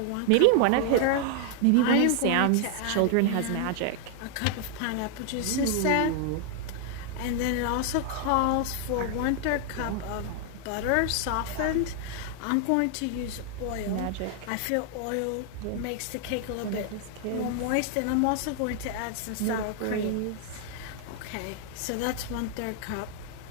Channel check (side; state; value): both; different; correlation 0.00